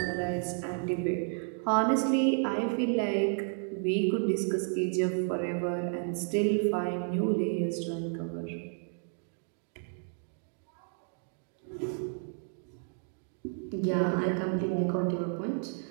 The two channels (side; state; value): left; silent; 57 dB below the other